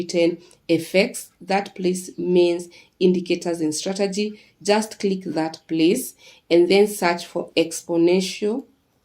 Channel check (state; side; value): identical; both; correlation 1.00